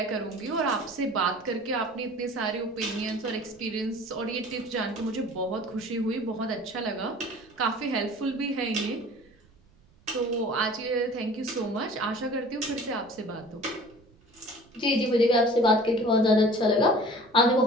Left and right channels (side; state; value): right; noise; rumble, 29 dB below the sound